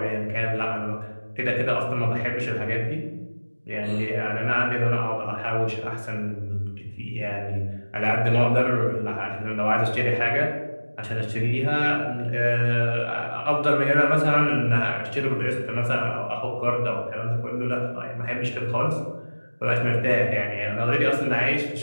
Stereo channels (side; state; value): both; inverted; correlation -1.00